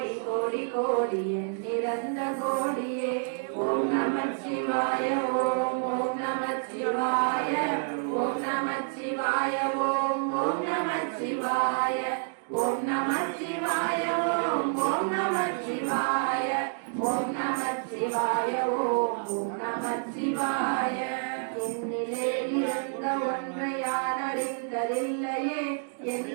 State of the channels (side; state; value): left; silent; digital silence